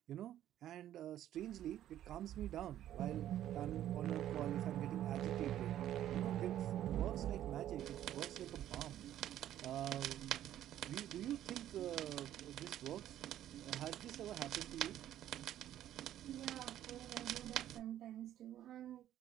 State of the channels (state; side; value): quieter; left; 12.0 dB